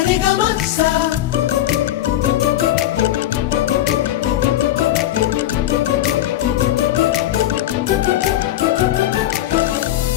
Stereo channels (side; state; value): right; quieter; 13.5 dB